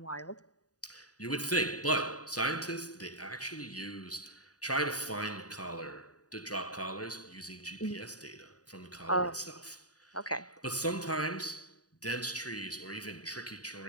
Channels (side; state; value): right; late; 0.68 ms